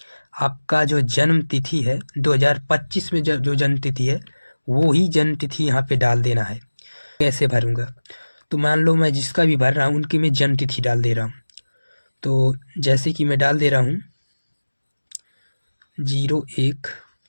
आपका जो जन्म तिथि है 2025 में जो जन्म तिथि है वो ही जन्म तिथि यहाँ पे डाल देना है। कैसे भरूँगा, तो मान लो मैं जिसका भी भर रहा हूँ उनकी मैं जन्म तिथि डाल दे रहा हूँ। तो जैसे कि मैं डाल दे रहा हूँ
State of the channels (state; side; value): inverted; both; correlation -1.00